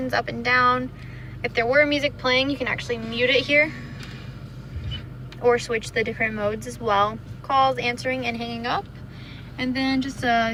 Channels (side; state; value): both; identical; correlation 1.00